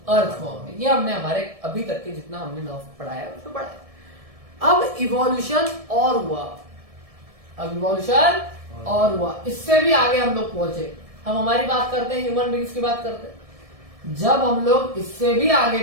अर्थवॉर्म में। ये हमने हमारे अभी तक के जितना हमने नर्व पढ़ाया है उसको पढ़ाया। अब इवोल्यूशन और हुआ, अब इवोल्यूशन और हुआ, इससे भी आगे हम लोग पहुंचे। हम हमारी बात करते हैं, ह्यूमन बींग्स की बात करते हैं। जब हम लोग इससे भी आगे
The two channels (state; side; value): late; left; 1.7 ms